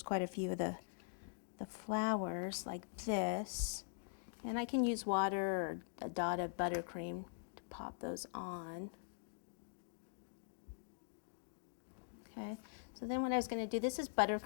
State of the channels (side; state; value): right; silent; digital silence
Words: quite a few of the flowers like this. And I can use water or a dot of buttercream to pop those on. Okay, so then what I was going to do, this is